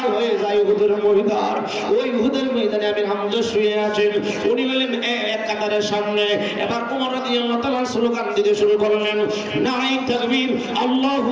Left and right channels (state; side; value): identical; both; correlation 1.00